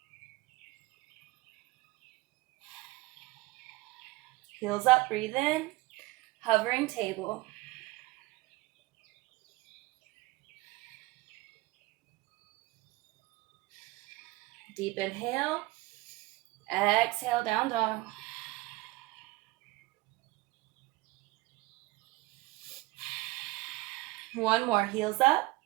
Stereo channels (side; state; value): left; quieter; 20.8 dB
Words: Heels up, breathe in. Hovering table. Deep inhale. Exhale, down dog. One more, heels up.